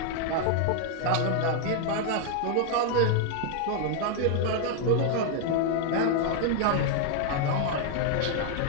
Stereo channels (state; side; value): different; both; correlation 0.00